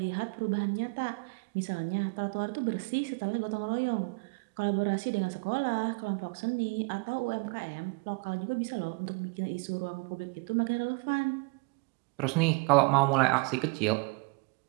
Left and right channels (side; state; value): left; quieter; 30.0 dB